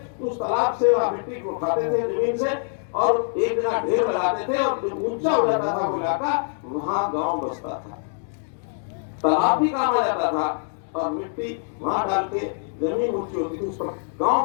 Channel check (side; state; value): right; silent; digital silence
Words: उस तालाब से वह मिट्टी को उठाते थे जमीन से और एक जगह ढेर लगाते थे और जो ऊंचा हो जाता था वो इलाका, वहां गांव बसता था। तालाब भी काम आ जाता था और मिट्टी वहां डाल के जमीन ऊंची होती थी, उस पर